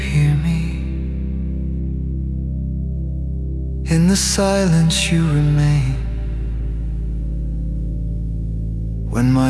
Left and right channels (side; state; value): both; identical; correlation 1.00